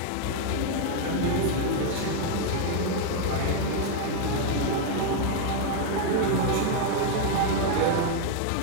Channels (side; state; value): both; different; correlation 0.00